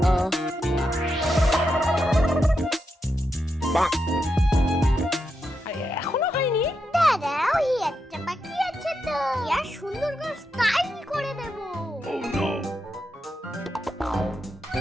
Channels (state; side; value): normal; both; correlation 0.85